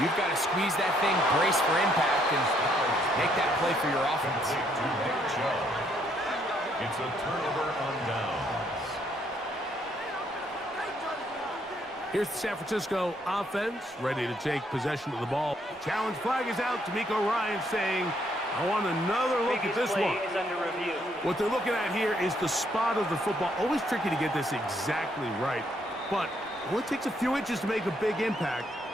You've got to squeeze that thing, brace for impact, and make that play for your offense. It's a turnover on downs. Here's the San Francisco offense ready to take possession of the ball. Challenge flag is out. D'Amico Ryan saying, I want another look at this one. What they're looking at here is the spot of the football. Always tricky to get this exactly right, but it only takes a few inches to make a big impact.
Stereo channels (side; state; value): both; normal; correlation 0.71